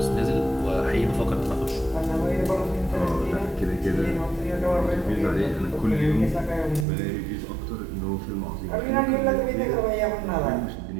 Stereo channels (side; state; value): left; drops out; at 6.9 s